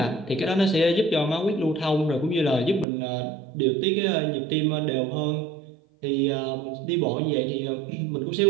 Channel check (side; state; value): left; drops out; at 2.9 s